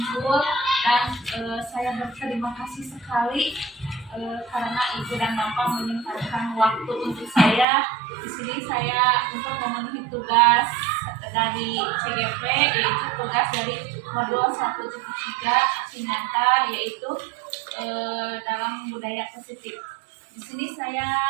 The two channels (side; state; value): left; drops out; at 7.7 s